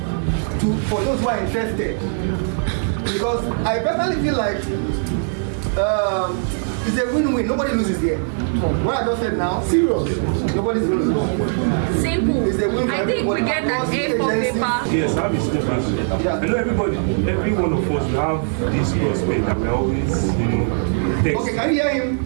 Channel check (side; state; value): left; silent; 65 dB below the other